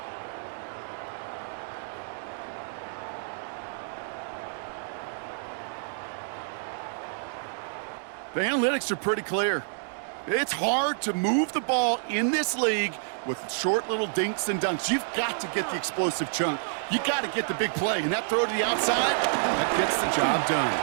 The analytics are pretty clear. It's hard to move the ball in this league with short little dinks and dunks. You've got to get the explosive chunk. You got to get the big play, and that throw to the outside, that gets the job done.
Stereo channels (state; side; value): silent; left; digital silence